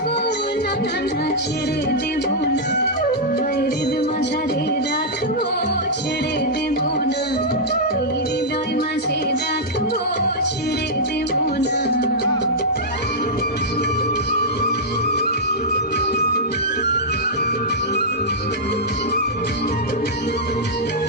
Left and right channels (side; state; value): both; normal; correlation -0.08